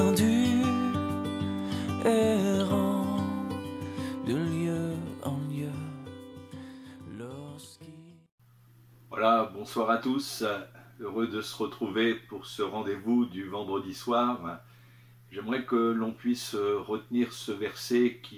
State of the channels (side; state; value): both; identical; correlation 1.00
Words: errant de lieu en lieu. Voilà, bonsoir à tous, heureux de se retrouver pour ce rendez-vous du vendredi soir. J'aimerais que l'on puisse retenir ce verset